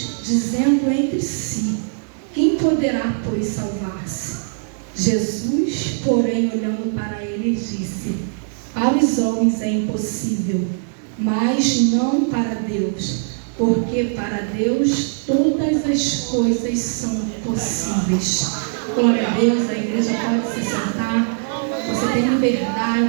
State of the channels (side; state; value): left; silent; 60 dB below the other